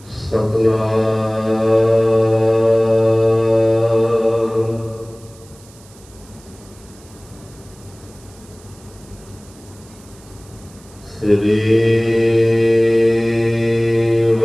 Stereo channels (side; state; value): right; noise; hiss, 25 dB below the sound